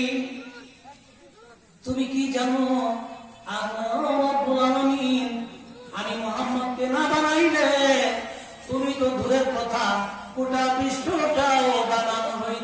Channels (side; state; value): both; identical; correlation 1.00